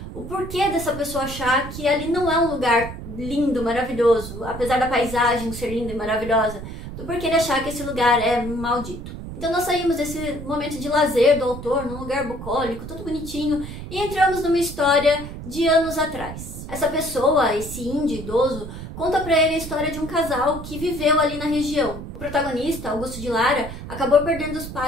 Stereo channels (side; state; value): right; noise; rumble, 10 dB below the sound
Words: O porquê dessa pessoa achar que ali não é um lugar lindo, maravilhoso, apesar da paisagem ser linda e maravilhosa, do porquê ele achar que esse lugar é maldito. Então nós saímos desse momento de lazer do autor, num lugar bucólico, todo bonitinho, e entramos numa história de anos atrás. Essa pessoa, esse índio idoso, conta pra ele a história de um casal que viveu ali na região. O protagonista, Augusto de Lara, acabou perdendo os